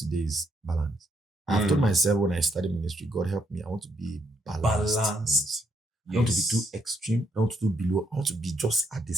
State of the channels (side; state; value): both; normal; correlation 0.74